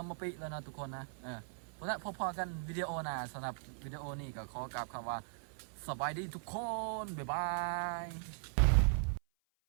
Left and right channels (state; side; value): silent; left; 52 dB below the other